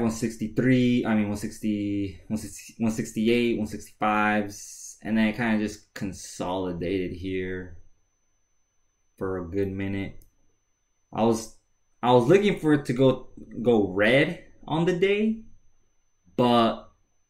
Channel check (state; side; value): identical; both; correlation 1.00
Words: 160, 168, 165s. And then it kind of just consolidated here for a good minute. I was looking for it to go red on the day, but